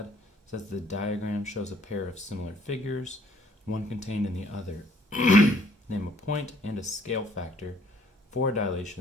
says the diagram shows a pair of similar figures, one contained in the other. Name a point and a scale factor for a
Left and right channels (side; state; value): both; normal; correlation 0.61